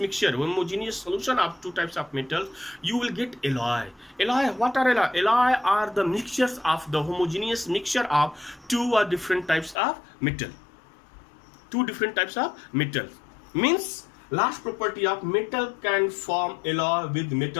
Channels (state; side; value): drops out; right; at 9.8 s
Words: homogeneous solution of two types of metals, you will get alloy. Alloy, what are alloy? Alloy are the mixtures of the homogeneous mixture of two or different types of metal. Two different types of metals. Means last property of metal can form alloy with